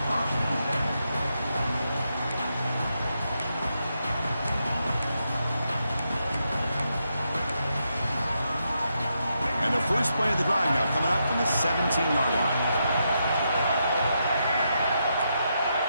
And the first play of the drive now coming up from the 17-yard line.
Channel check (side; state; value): both; inverted; correlation -0.83